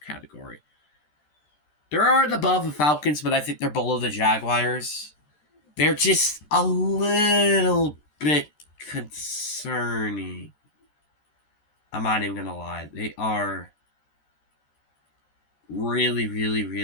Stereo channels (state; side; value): late; right; 13 ms